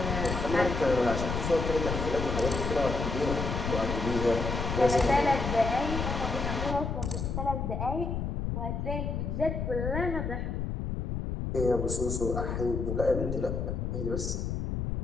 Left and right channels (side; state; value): left; noise; rumble, 2 dB below the sound